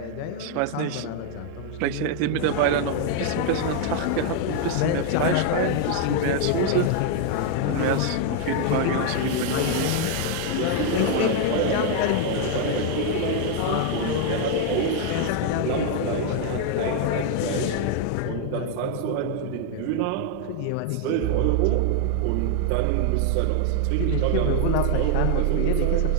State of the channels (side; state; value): both; different; correlation 0.00